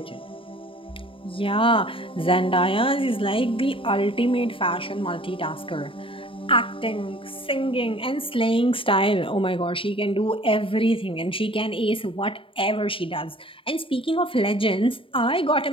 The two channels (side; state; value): right; late; 0.26 ms